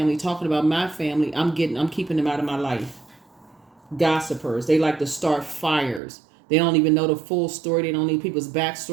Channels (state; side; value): drops out; left; at 6.0 s